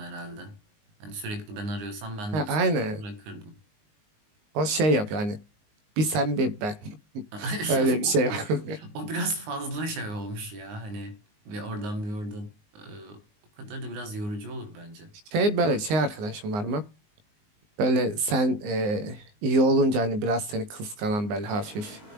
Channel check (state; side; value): late; left; 19 ms